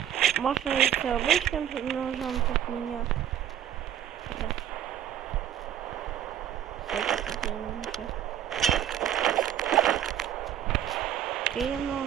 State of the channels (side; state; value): left; quieter; 10.5 dB